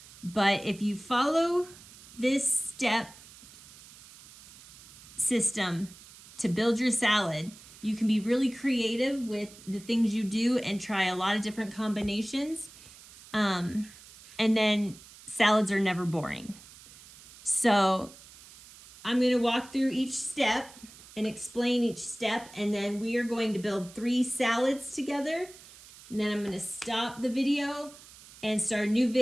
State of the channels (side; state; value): right; noise; hiss, 20 dB below the sound